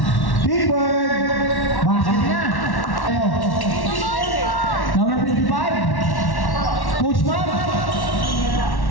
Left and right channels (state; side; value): late; right; 1.1 ms